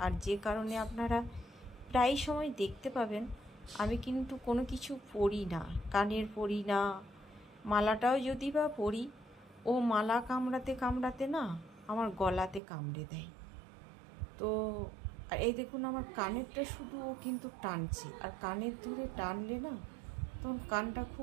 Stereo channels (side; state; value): left; drops out; at 12.6 s